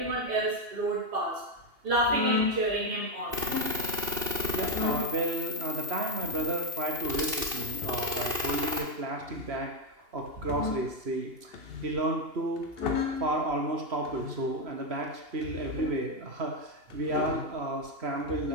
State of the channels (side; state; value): left; late; 2.7 ms